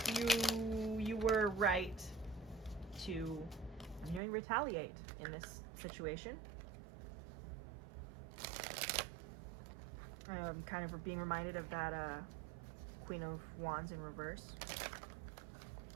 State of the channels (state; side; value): drops out; left; at 4.2 s